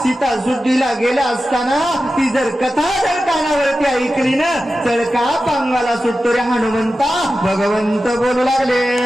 सीता सुद्धीला गेला असताना ती जर कथा जर कानावरती ऐकली ना चळका पांगाला सुटतो रे हनुमंता. भगवंत बोलू लागले.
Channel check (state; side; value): normal; both; correlation 0.93